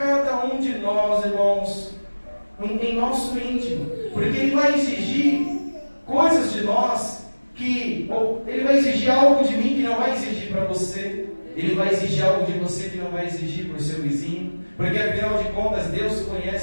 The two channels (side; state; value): both; inverted; correlation -1.00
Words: um de nós, irmãos, em nosso íntimo, porque Ele vai exigir coisas de nós Ele vai exigir algo de mim que não vai exigir para você. Ele vai exigir algo de você que não vai exigir para o seu vizinho, porque afinal de contas Deus